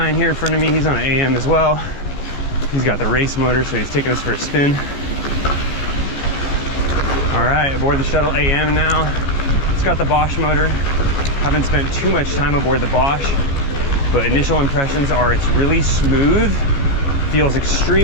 here in front of me. He's on an AM as well. He's got the race motor, so he's taking us for a spin. All right, aboard the Shuttle AM now. It's got the Bosch motor. Haven't spent too much time aboard the Bosch, but initial impressions are it's really smooth, feels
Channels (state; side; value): late; right; 14 ms